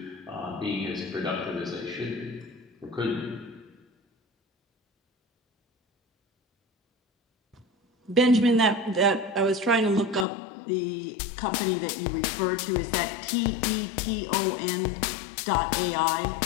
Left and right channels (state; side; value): drops out; right; at 10.2 s